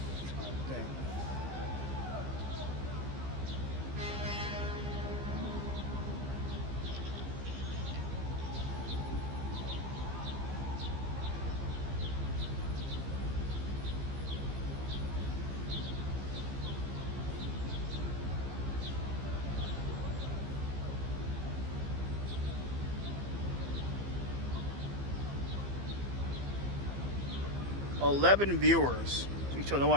dang. 11 viewers. You told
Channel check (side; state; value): left; late; 15 ms